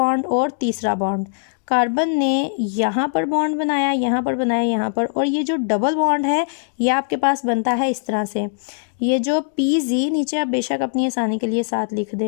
और तीसरा बॉन्ड। कार्बन ने यहाँ पर बॉन्ड बनाया, यहाँ पर बनाया, यहाँ पर, और ये जो डबल बॉन्ड है ये आपके पास बनता है इस तरह से। ये जो pz नीचे आप बेशक अपनी आसानी के लिए साथ लिख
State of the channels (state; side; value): silent; right; digital silence